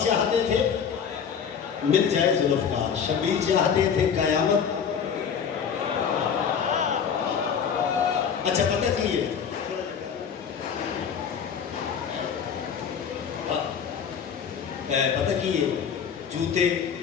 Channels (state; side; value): quieter; right; 7.2 dB